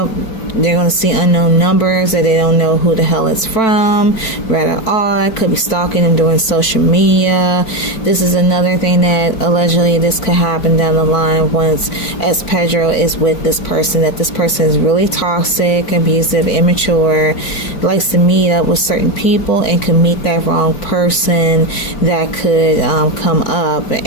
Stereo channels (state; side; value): late; right; 4.5 ms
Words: They're going to see unknown numbers that they don't know who the hell it's from. Rather odd. Could be stalking them doing social media. This is another thing that allegedly this could happen down the line once, as Pedro is with this person, that this person is really toxic, abusive, immature, likes to meet up with certain people and could meet that wrong person that could come up